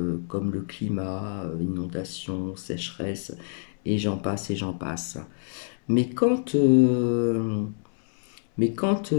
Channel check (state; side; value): silent; right; 60 dB below the other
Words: comme le climat, inondation, sécheresse, et j'en passe et j'en passe. Mais quand